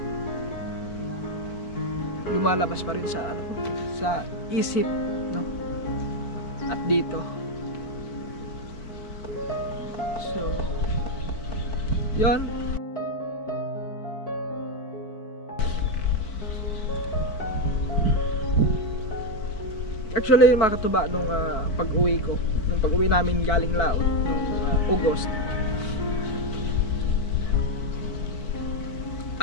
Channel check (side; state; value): right; late; 4.6 ms